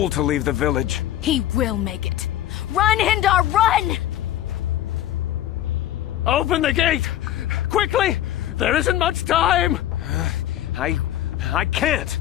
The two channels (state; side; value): quieter; right; 12.8 dB